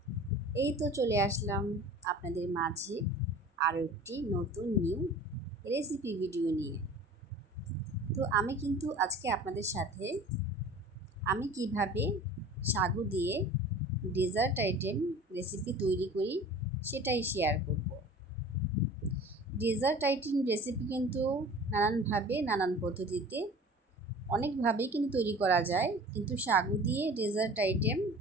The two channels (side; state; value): both; normal; correlation 0.42